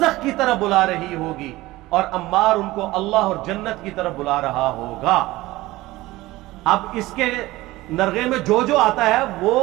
کی طرف بلا رہی ہوگی اور عمار ان کو اللہ اور جنت کی طرف بلا رہا ہوگا۔ اب اس کے نرغے میں جو آتا ہے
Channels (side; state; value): left; quieter; 18.5 dB